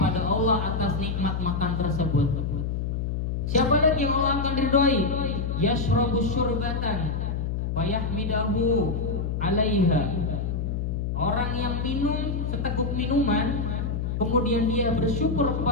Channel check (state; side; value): noise; left; hum, 1 dB below the sound